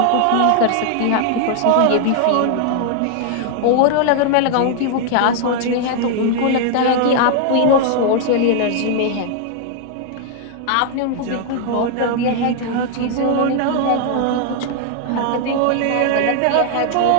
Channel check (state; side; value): different; both; correlation 0.00